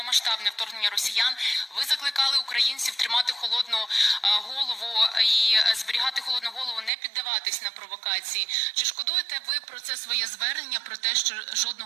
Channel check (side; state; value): left; drops out; at 6.9 s